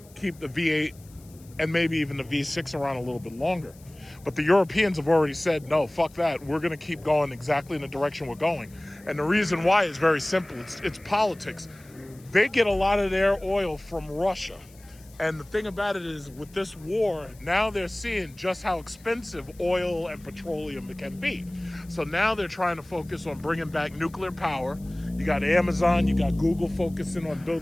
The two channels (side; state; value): left; noise; hiss, 26 dB below the sound